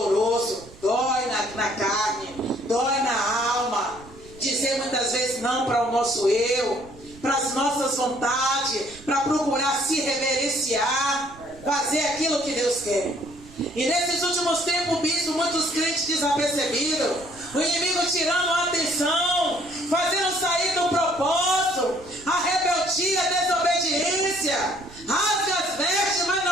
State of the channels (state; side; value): noise; right; rumble, 21 dB below the sound